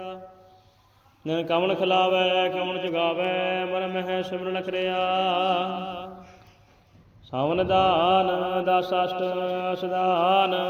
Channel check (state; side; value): identical; both; correlation 1.00